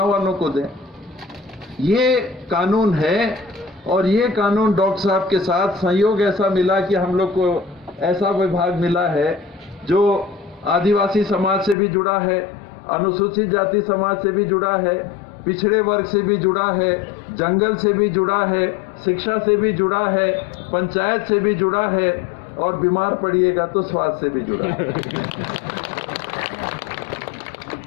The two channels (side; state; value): right; drops out; at 11.8 s